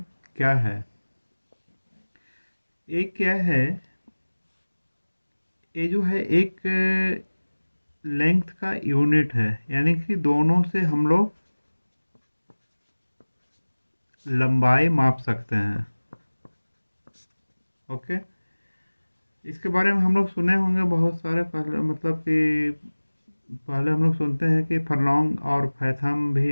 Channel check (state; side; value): inverted; both; correlation -1.00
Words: क्या है। ये क्या है? ये जो है एक लेंथ का यूनिट है, यानी कि दोनों से हम लोग लंबाई माप सकते हैं। ओके, इसके बारे में हम लोग सुने होंगे बहुत सारे। पहले मतलब कि पहले हम लोग सुनते हैं कि फरलोंग और फैथम भी